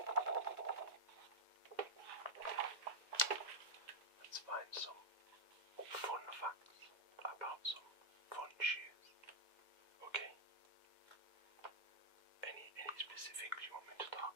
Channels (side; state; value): left; late; 2.0 ms